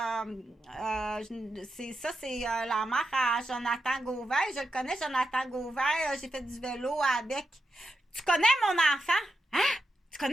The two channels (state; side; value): normal; both; correlation 0.87